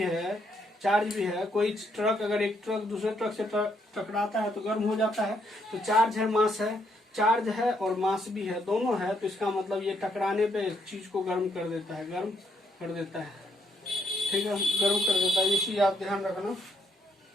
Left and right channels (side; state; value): both; normal; correlation 0.73